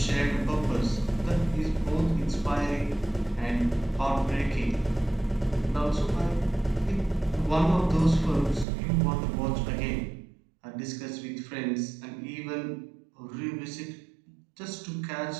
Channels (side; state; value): left; drops out; at 8.7 s